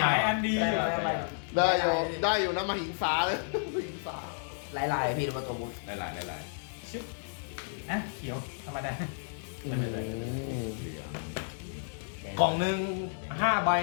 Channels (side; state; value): right; silent; digital silence